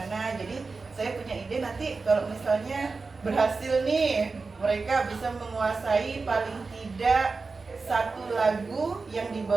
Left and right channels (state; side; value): quieter; left; 4.2 dB